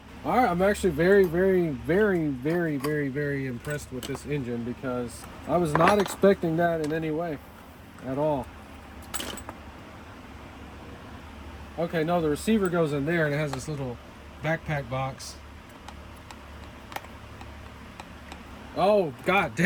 All right, I'm actually very, very, very, very, very, very impressed with this engine because I was not expecting that in any way at all. Okay, no, the receiver goes in there and it has this little backpack box. Oh, God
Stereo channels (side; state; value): both; identical; correlation 1.00